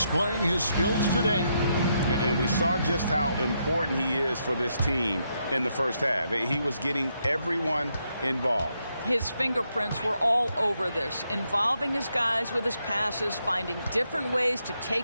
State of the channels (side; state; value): both; inverted; correlation -0.79